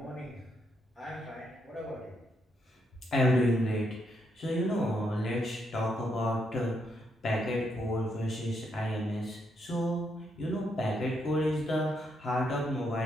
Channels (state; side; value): normal; both; correlation 0.78